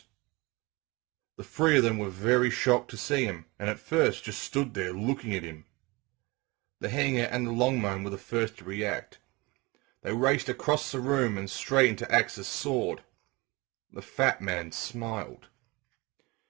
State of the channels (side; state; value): left; quieter; 24.7 dB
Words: The 3 of them were very shocked to see him, and at first just stood there looking at him. The hanger and the longmoan were the first to react. They raced across the room and straight into Axe's sword. The fat man smiled.